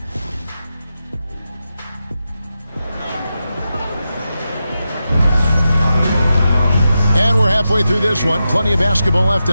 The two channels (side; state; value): both; inverted; correlation -0.89